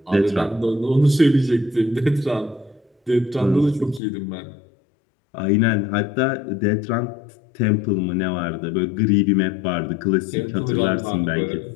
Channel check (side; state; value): right; drops out; at 4.0 s